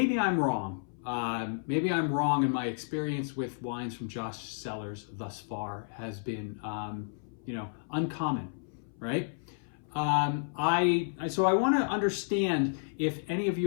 I'm wrong. Maybe I'm wrong, and my experience with wines from Josh Cellars thus far has been, uncommon, right? So I want to understand if any of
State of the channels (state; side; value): silent; right; 57 dB below the other